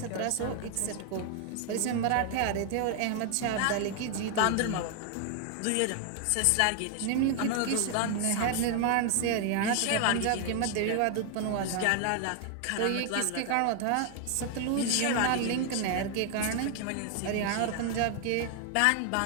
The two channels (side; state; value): both; different; correlation 0.00